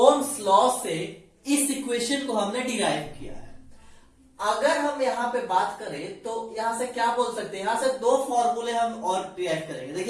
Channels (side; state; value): both; identical; correlation 1.00